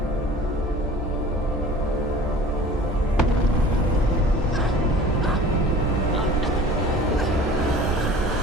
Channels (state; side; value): normal; both; correlation 0.44